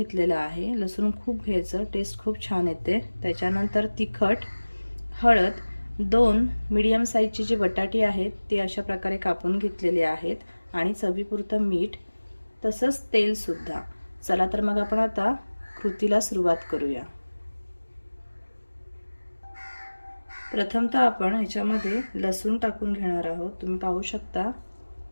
आहे। लसूण खूप घ्यायचं, टेस्ट खूप छान येते। त्याच्यानंतर तिखट, हळद, 2 मीडियम साईजची जी बटाटी आहेत ती अशा प्रकारे कापून घेतलेली आहेत आणि चवीपुरतं मीठ, तसंच तेल सुद्धा। चला तर मग आपण आता कृतीला सुरुवात करूया। प्रथमतः आपण ह्याच्यामध्ये लसूण टाकून घेणार आहोत। तुम्ही पाहू शकता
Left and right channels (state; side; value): inverted; both; correlation -1.00